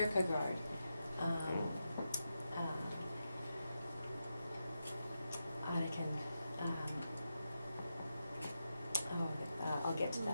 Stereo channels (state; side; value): inverted; both; correlation -0.88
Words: I can, I'll get to